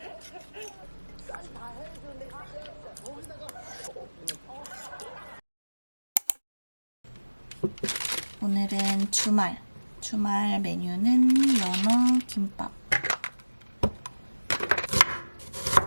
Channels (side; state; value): both; inverted; correlation -1.00